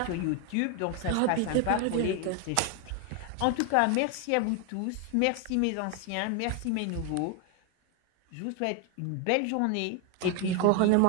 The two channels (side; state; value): both; different; correlation 0.01